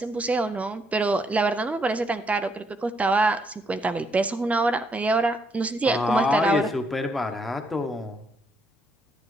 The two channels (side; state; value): both; normal; correlation 0.74